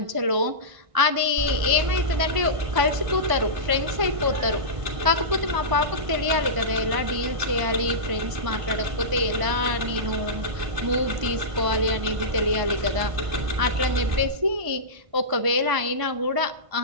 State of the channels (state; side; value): late; left; 1.5 ms